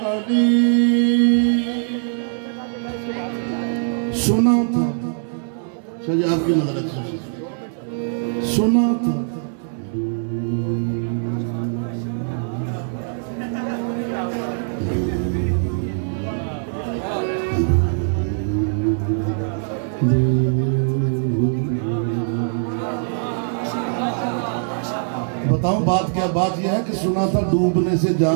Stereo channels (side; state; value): left; silent; digital silence